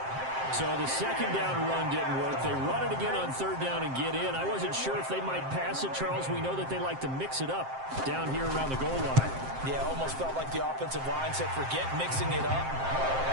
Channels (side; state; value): left; late; 7.6 ms